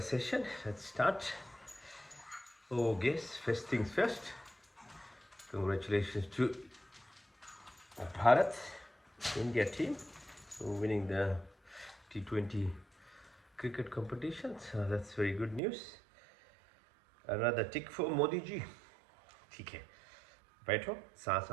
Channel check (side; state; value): left; drops out; at 15.6 s